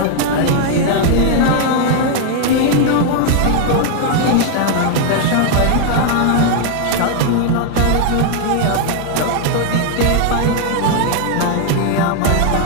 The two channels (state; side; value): different; both; correlation 0.00